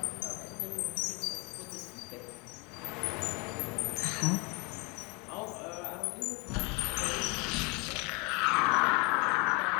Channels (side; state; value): right; quieter; 29.4 dB